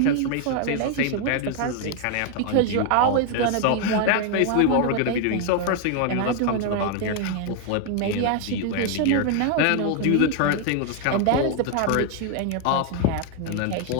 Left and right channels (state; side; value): different; both; correlation 0.00